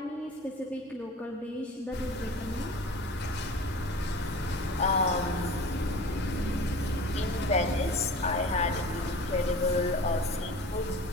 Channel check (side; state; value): both; normal; correlation 0.39